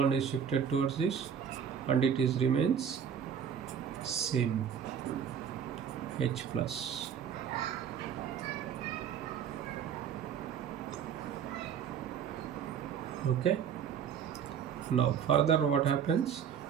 is shifted towards this, and it is remains same, H plus. Okay, now further what happens?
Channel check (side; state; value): left; quieter; 8.0 dB